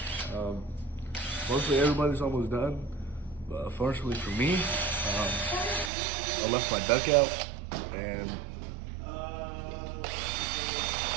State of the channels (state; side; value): drops out; left; at 5.9 s